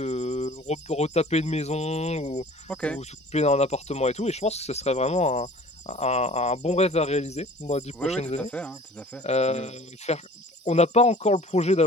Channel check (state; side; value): normal; both; correlation 0.47